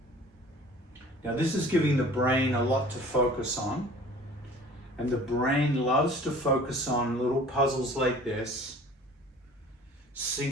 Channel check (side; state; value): both; normal; correlation 0.47